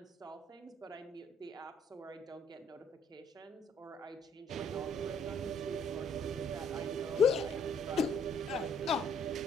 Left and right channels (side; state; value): both; normal; correlation 0.64